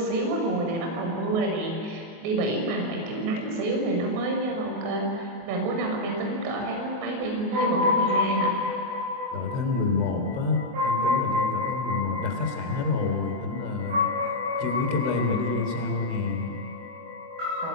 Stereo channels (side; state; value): left; late; 24 ms